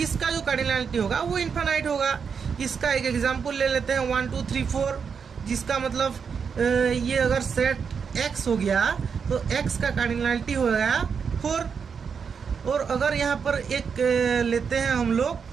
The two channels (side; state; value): left; quieter; 6.3 dB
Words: जो कार्डिनलिटी होगा वो इन्फानाइट होगा। इसका एक एग्जांपल ले लेते हैं, 1 2 3 4, जिसका मतलब ये अगर सेट x हो गया तो x का कार्डिनलिटी हो गया 4। और अगर यहाँ पर एक लेते हैं हम